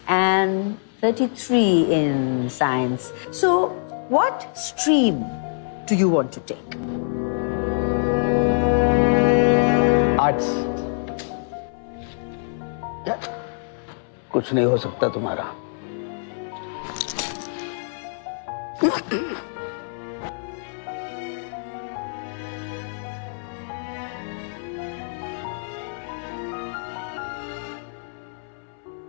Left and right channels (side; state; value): right; silent; 62 dB below the other